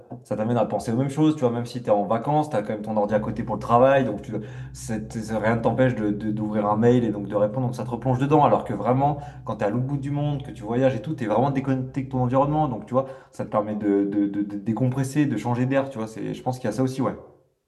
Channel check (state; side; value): identical; both; correlation 1.00